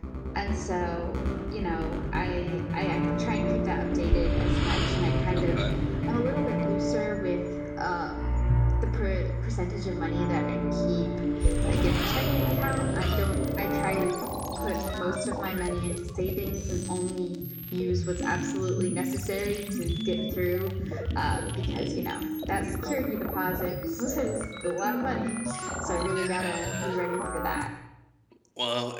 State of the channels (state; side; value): identical; both; correlation 1.00